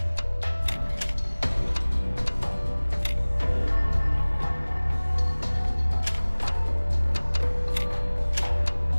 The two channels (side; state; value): both; inverted; correlation -1.00